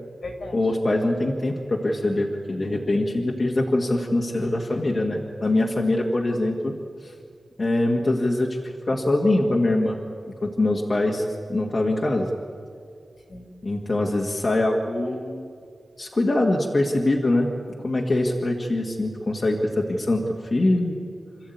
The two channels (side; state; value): both; normal; correlation 0.96